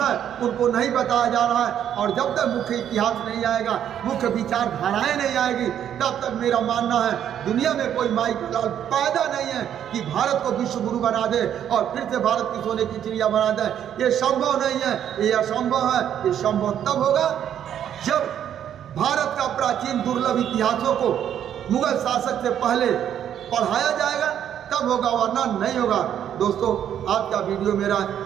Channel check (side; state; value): left; quieter; 9.8 dB